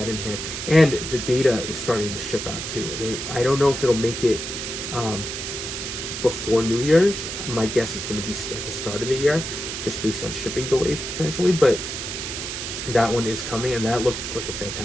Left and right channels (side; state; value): right; noise; hiss, 5 dB below the sound